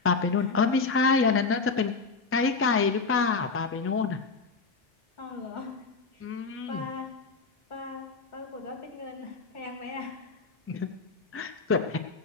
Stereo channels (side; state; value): right; quieter; 4.4 dB